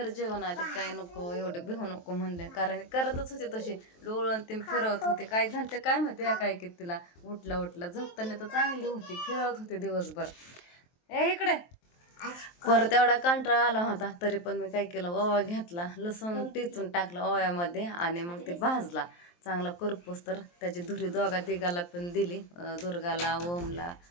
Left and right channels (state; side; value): late; right; 23 ms